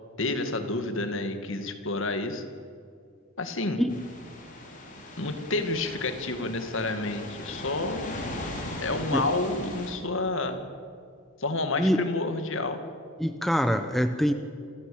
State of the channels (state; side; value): normal; both; correlation 0.36